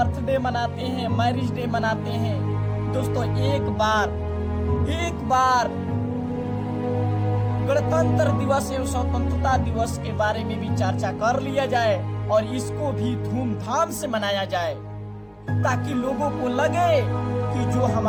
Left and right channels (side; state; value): both; identical; correlation 1.00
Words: मनाते हैं, मैरिज डे मनाते हैं। दोस्तों एक बार गणतंत्र दिवस एवं स्वतंत्रता दिवस के बारे में भी चर्चा कर लिया जाए और इसको भी धूमधाम से मनाया जाए, ताकि लोगों को लगे कि जो